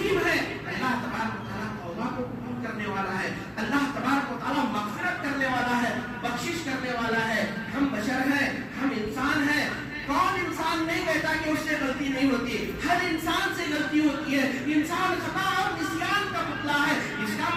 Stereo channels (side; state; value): both; identical; correlation 1.00